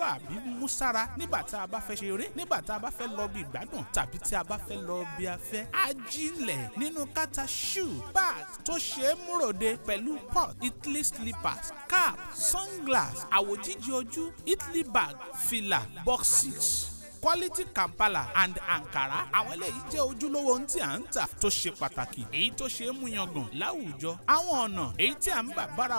mú sára nígbà tá a bá fẹ́ ṣeré nígbà tá a bá fẹ́ lọ bí ìgbádùn tàbí tí a bá fẹ́ lọ bí afẹ́. ajílẹ̀ nínú káàtà shoe bag tó ṣe é múròde pẹ̀lú pot Italy slippers cap sunglass àwòjíjì ojú Italy bag fìlà boxes quality Kampala and Ankara. àwọn eléyìí jẹ́ ojúlówó ohun tí à ń tà tó ṣe pàtàkì èyí tó ṣe é mú yangàn láwùjọ. àwọn ọ̀nà èyí tí à ń bà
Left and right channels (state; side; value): inverted; both; correlation -1.00